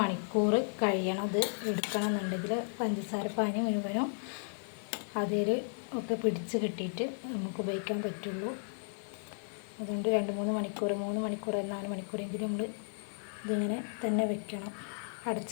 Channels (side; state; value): right; silent; 55 dB below the other